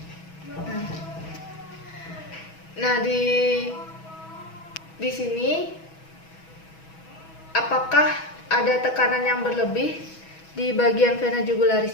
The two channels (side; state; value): right; late; 6.2 ms